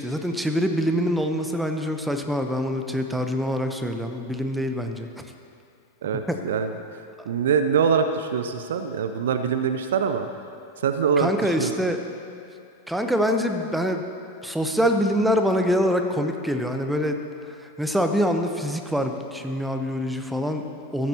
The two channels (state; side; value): normal; both; correlation 0.33